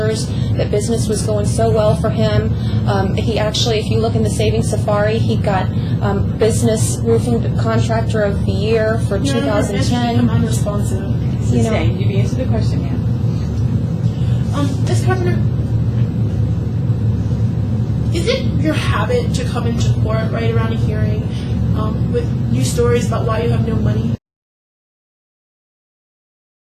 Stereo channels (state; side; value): identical; both; correlation 1.00